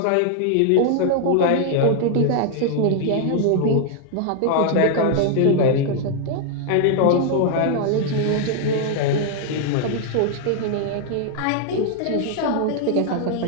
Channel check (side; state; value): both; different; correlation 0.00